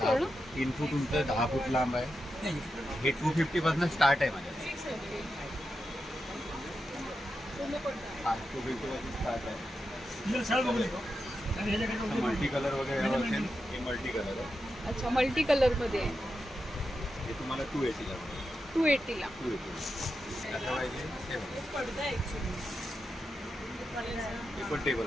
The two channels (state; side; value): normal; both; correlation 0.88